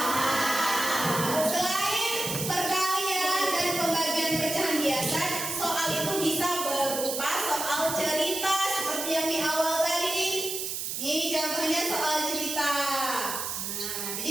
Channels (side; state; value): right; noise; hiss, 3 dB below the sound